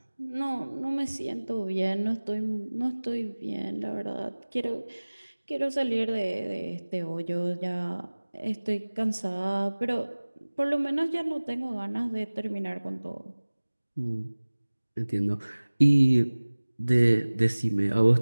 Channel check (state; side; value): inverted; both; correlation -1.00